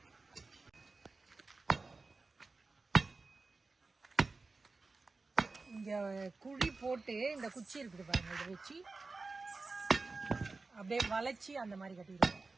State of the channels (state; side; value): quieter; left; 3.8 dB